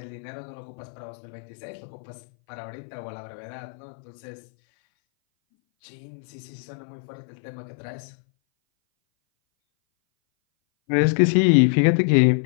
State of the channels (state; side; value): silent; right; 59 dB below the other